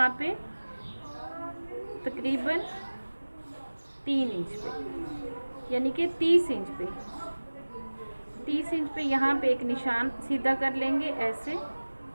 पे तकरीबन 3 इंच पे, यानी कि 30 इंच पे, 30 इंच पे यहाँ पे एक निशान सीधा कर लेंगे ऐसे।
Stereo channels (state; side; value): inverted; both; correlation -1.00